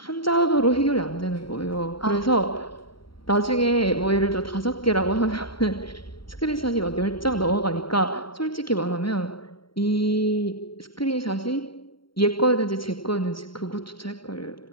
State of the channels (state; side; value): late; right; 0.73 ms